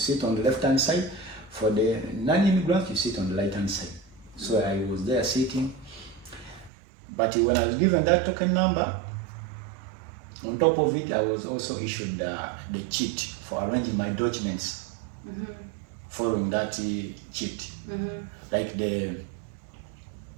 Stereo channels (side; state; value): left; drops out; at 6.7 s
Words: on the left-hand side. For the non-immigrants, you sit on the right-hand side. So I was there sitting. But when I was given that token number, on top of it, I was also issued the cheat for arranging my documents following that cheat. Like the